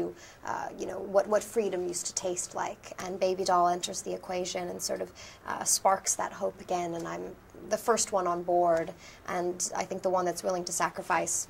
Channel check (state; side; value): identical; both; correlation 1.00